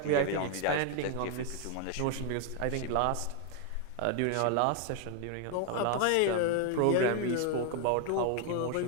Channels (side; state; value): both; different; correlation 0.00